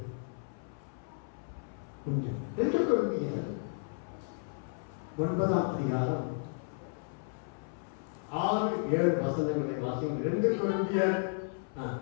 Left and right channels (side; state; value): right; silent; 55 dB below the other